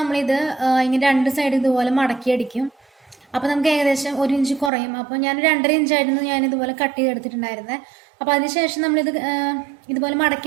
ഇങ്ങനെ 2 സൈഡ് ഇതുപോലെ മടക്കി അടിക്കും. അപ്പോൾ നമുക്ക് ഏകദേശം 1 ഇഞ്ച് കുറയും. അപ്പോൾ ഞാൻ 2.5 ഇഞ്ചായിരുന്നു ഞാനിതുപോലെ കട്ട് ചെയ്തെടുത്തിട്ടുണ്ടായിരുന്നത്. അപ്പോൾ അതിനുശേഷം നമ്മളിത് ഇതുപോലെ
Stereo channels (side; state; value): left; drops out; at 4.7 s